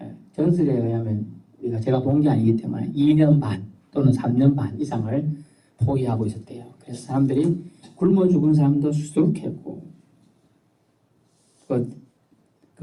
전설에 의하면 제가 본 게 아니기 때문에 2년 반 또는 3년 반 이상을 포위하고 있었대요. 그래서 사람들이 굶어 죽은 사람도 수두룩했고,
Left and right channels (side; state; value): both; identical; correlation 1.00